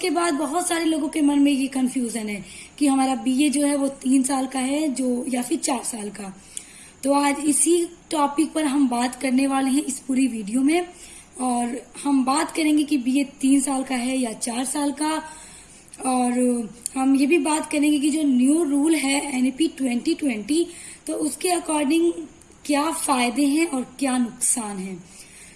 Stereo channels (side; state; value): both; identical; correlation 1.00